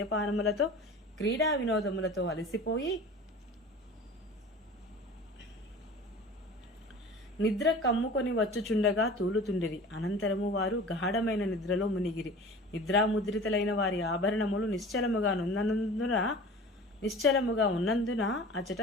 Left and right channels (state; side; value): normal; both; correlation 0.39